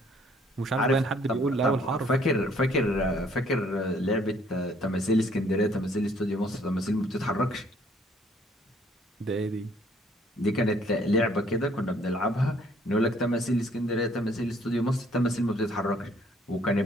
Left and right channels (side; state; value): both; normal; correlation 0.62